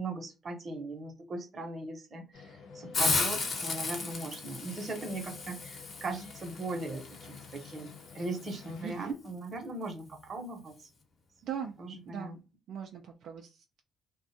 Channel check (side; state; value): both; normal; correlation 0.70